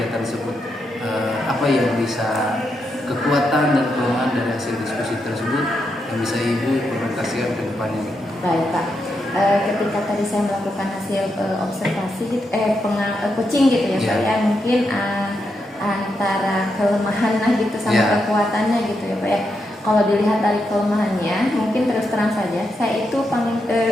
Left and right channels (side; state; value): both; normal; correlation 0.83